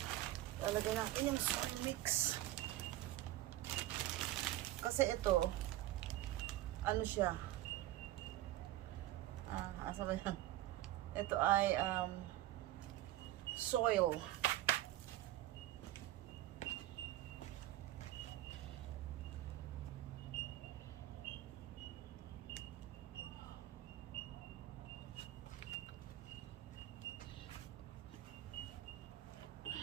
Lalagay natin yung soil mix. Kasi ito, ano siya? Asa ba yan? Ito ay soil.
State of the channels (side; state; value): left; quieter; 15.3 dB